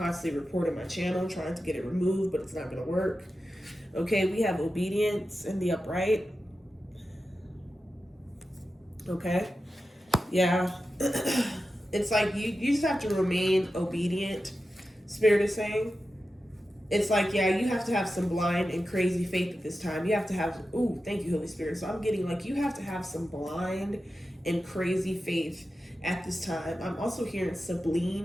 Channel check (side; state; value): both; normal; correlation 0.92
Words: reporting my channel, trying to get it removed, but it's not going to work. Okay, we have obedience in the upright. Okay. Yeah. It's like you just have to remain obedient, Spirit is saying. It's like, yeah, you have to have some blind and crazy faith at this time. You have to have, ooh, thank you, Holy Spirit. So I'm getting like, you have to have some blind and crazy faith at this time. I'm also hearing